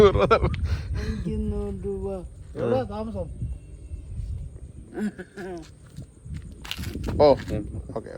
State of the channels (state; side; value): identical; both; correlation 1.00